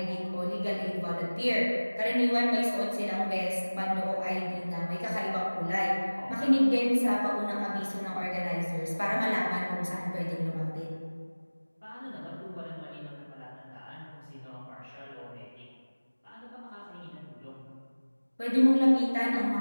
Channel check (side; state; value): both; inverted; correlation -1.00